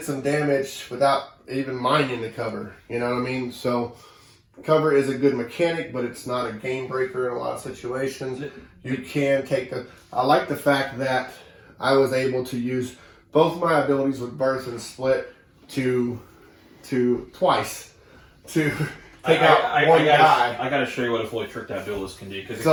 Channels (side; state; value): both; identical; correlation 1.00